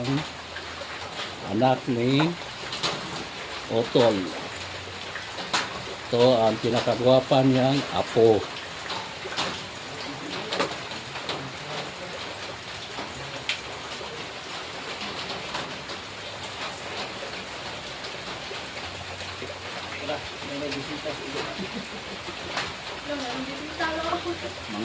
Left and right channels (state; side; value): identical; both; correlation 1.00